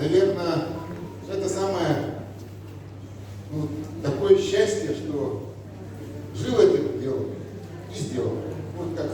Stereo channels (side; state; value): both; identical; correlation 1.00